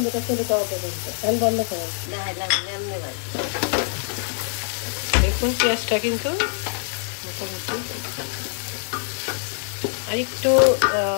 চলে যাওয়া পর্যন্ত। তেল বন্ধ করো। দেখুন পেঁয়াজটা কিন্তু মোটামুটি আর একটু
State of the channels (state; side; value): silent; right; digital silence